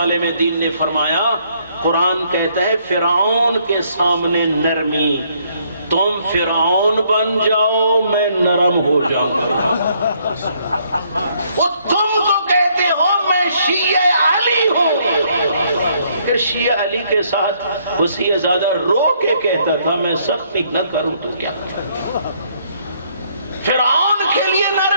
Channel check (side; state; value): both; inverted; correlation -0.68